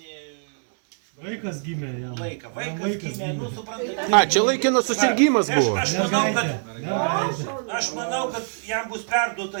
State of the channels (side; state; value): left; silent; digital silence